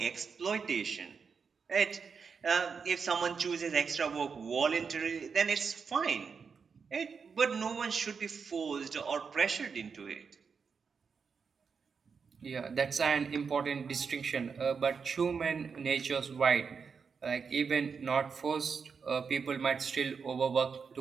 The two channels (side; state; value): left; quieter; 5.7 dB